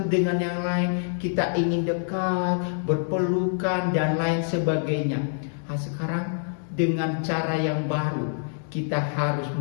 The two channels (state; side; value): silent; right; digital silence